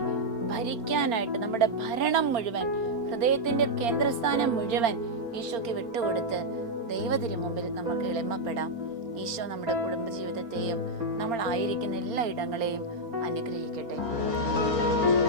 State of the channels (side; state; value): left; late; 4.4 ms